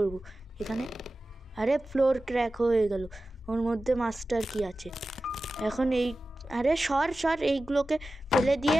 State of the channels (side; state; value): both; normal; correlation 0.94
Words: এখানে? আরে ফ্লোর ক্র্যাক হয়ে গেল, ওর মধ্যে মাস্টার কি আছে এখন? আরে সর এইগুলোকে ফেলে